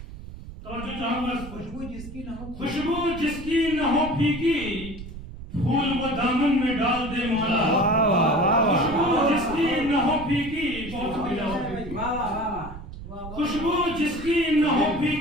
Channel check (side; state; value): right; noise; rumble, 12 dB below the sound